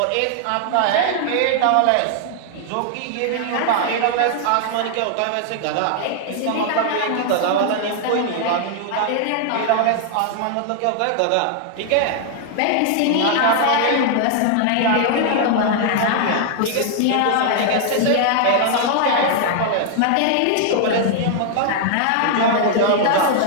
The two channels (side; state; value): both; different; correlation 0.00